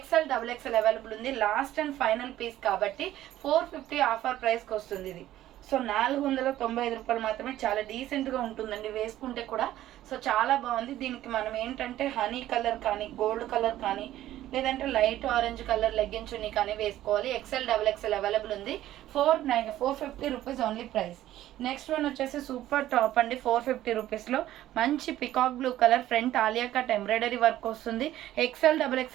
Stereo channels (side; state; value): left; quieter; 13.7 dB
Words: XXL available ఉంది. లాస్ట్ అండ్ ఫైనల్ పీస్ కాబట్టి 450 ఆఫర్ ప్రైస్ కి వస్తుంది ఇది. సో 495 రూపాయలు మాత్రమే. చాలా డీసెంట్ గా ఉంటుందండి వేసుకుంటే కూడా. సో చాలా బాగుంది. దీనికి మనం ఏంటంటే హనీ కలర్ కానీ, గోల్డ్ కలర్ కానీ, లేదంటే light orange colour legging chunni కానీ వేసుకోవాలి. ఎక్సెల్ XXL అవైలబుల్ ఉంది. 450 rupees only price. Next one వచ్చేసి సూపర్ టాప్ అండి. 450 రూపీస్లో మంచి peacock blue colour, front Alia cut embroidery work వస్తుంది. XL